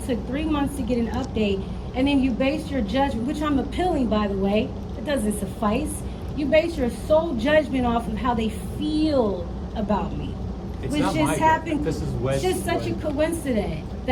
took 3 months to get an update, and then you base your judgment, which I'm appealing, by the way, it doesn't suffice. You base your sole judgment off of how they feel about me. It's which not just my happened. This is it's just such a coincidence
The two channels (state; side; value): identical; both; correlation 1.00